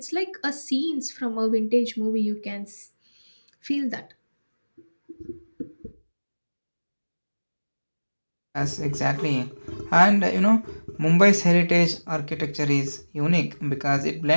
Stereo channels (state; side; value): inverted; both; correlation -1.00